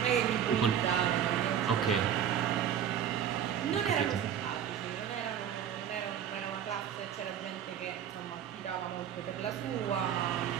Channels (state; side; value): quieter; left; 9.0 dB